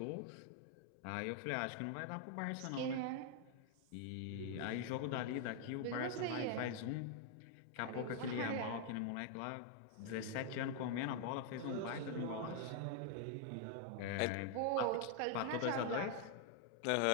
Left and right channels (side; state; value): both; different; correlation 0.00